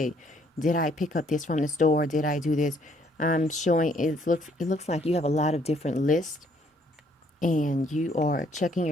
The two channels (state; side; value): normal; both; correlation 0.66